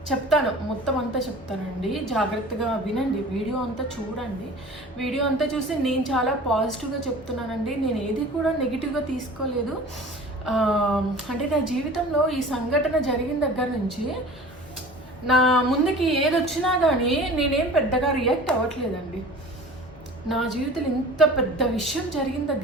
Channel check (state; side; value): normal; both; correlation 0.41